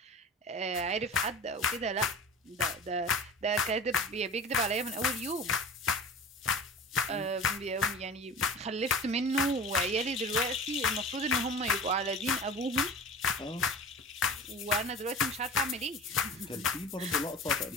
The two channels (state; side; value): normal; both; correlation 0.36